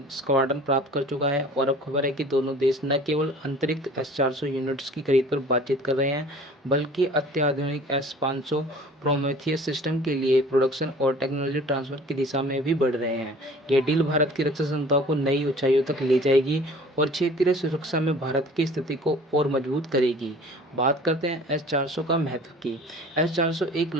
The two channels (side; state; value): both; normal; correlation 0.47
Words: स्क्वाड्रन प्राप्त कर चुका है और अब खबर है कि दोनों देश न केवल अंतरिक्ष S-400 यूनिट्स की खरीद पर बातचीत कर रहे हैं, बल्कि अत्याधुनिक S-500 प्रोमेथियस सिस्टम के लिए प्रोडक्शन और टेक्नोलॉजी ट्रांसफर की दिशा में भी बढ़ रहे हैं। यह डील भारत की रक्षा क्षमताओं को नई ऊंचाइयों तक ले जाएगी और क्षेत्रीय सुरक्षा में भारत की स्थिति को और मजबूत करेगी। बात करते हैं S-400 का महत्व की। S-400 एक